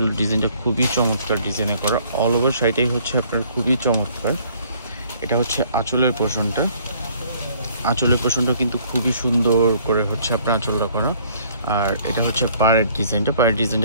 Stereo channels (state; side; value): inverted; both; correlation -0.60